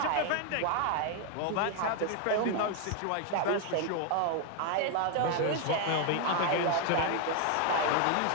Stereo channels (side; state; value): both; different; correlation 0.01